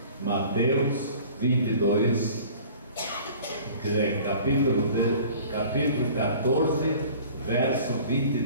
Mateus 22, quer dizer, capítulo 14, verso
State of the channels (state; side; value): inverted; both; correlation -0.46